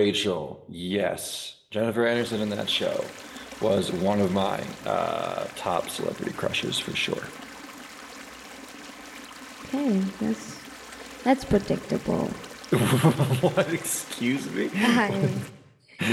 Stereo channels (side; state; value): both; identical; correlation 1.00